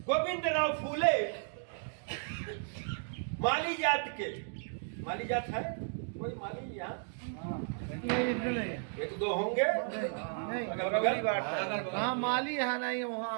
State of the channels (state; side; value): silent; left; digital silence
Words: गोविंदराव फूले माली जात के, माली जात है कोई माली यहाँ? एक दो होंगे हाँ, माली है नहीं